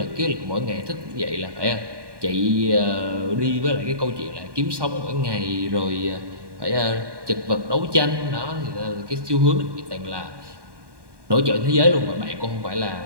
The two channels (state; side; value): late; left; 1.2 ms